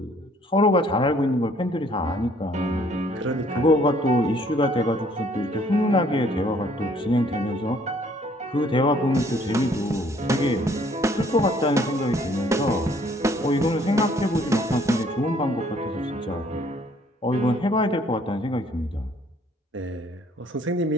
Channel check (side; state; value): both; normal; correlation 0.62